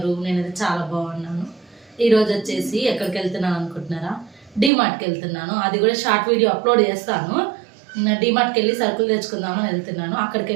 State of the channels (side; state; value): left; drops out; at 4.7 s